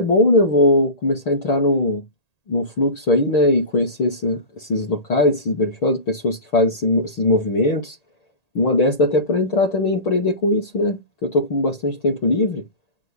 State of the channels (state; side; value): late; right; 1.8 ms